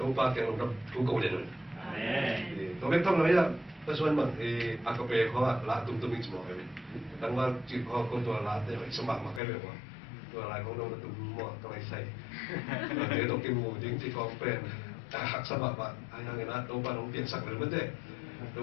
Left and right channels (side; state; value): right; drops out; at 9.4 s